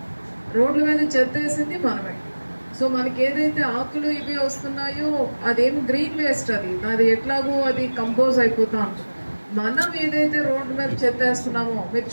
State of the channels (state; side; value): inverted; both; correlation -1.00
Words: రోడ్ల మీద చెత్త వేసింది మనమే. సో మనకి ఏదైతే ఆకులు ఇవి వస్తున్నాయో అదేమి గ్రీన్ వేస్ట్, అది ఎట్లాగో అది కంపోజ్ అయిపోతా ఉంటుంది. మనం ఏదైతే రోడ్డు మీద చెత్త వేస్తున్నామో, మీరు